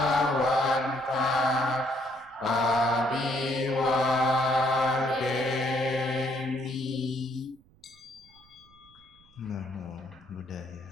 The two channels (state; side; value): noise; right; rumble, 29 dB below the sound